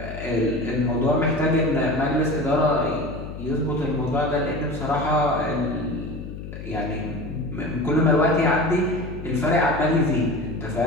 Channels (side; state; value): left; noise; hum, 10 dB below the sound